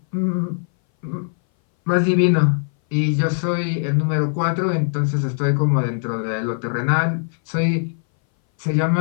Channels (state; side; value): silent; right; 60 dB below the other